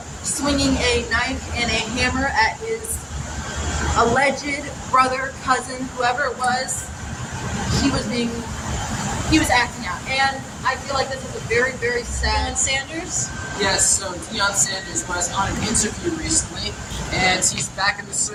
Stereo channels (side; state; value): both; identical; correlation 1.00